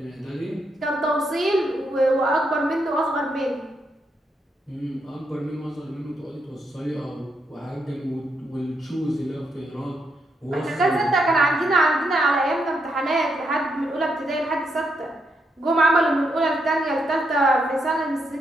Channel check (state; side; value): normal; both; correlation 0.79